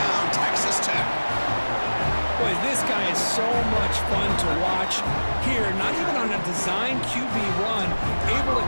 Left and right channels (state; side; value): inverted; both; correlation -1.00